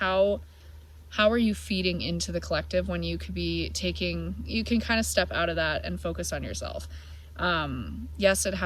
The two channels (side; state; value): both; identical; correlation 1.00